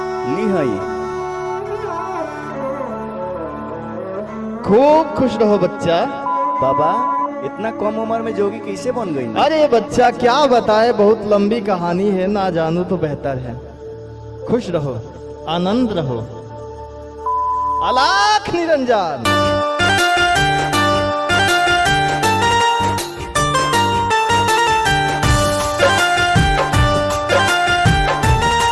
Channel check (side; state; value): both; identical; correlation 1.00